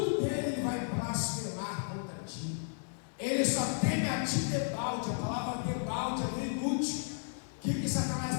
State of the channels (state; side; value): silent; right; digital silence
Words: dele, ele vai blasfemar contra ti. Ele só teme a ti debalde. A palavra debalde é bem útil. O que Satanás